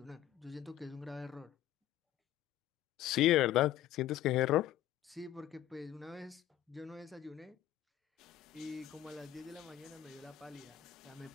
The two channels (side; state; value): right; quieter; 12.4 dB